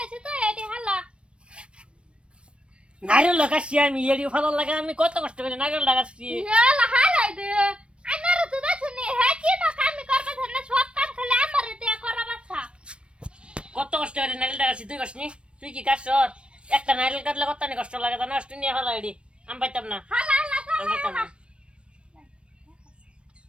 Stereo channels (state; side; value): late; left; 0.058 ms